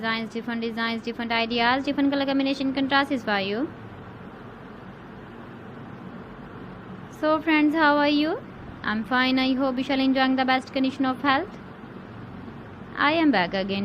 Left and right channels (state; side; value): identical; both; correlation 1.00